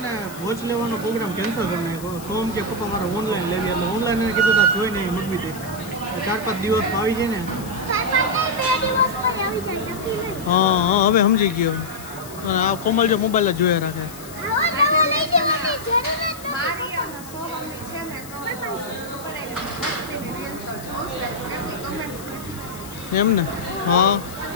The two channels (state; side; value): noise; left; hiss, 17 dB below the sound